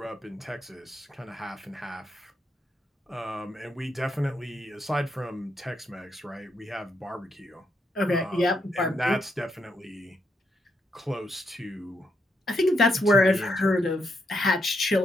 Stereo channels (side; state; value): both; normal; correlation 0.79